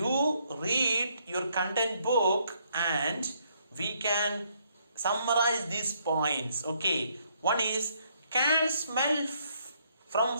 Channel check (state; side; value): inverted; both; correlation -0.70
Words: read your content book and we can summarize these points. Okay, one is can smell from